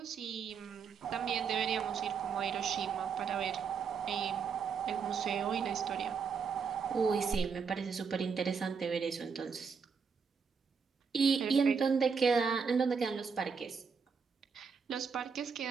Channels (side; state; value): left; quieter; 5.9 dB